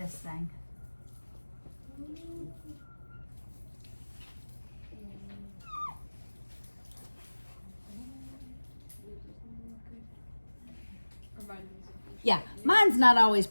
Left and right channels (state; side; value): inverted; both; correlation -1.00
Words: thing. Yeah, mine's not always